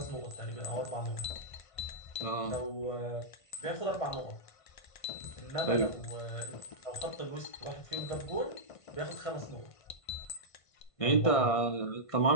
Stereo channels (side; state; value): right; late; 1.5 ms